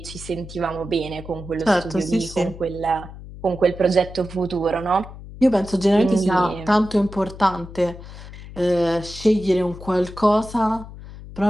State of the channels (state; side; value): noise; left; hum, 14 dB below the sound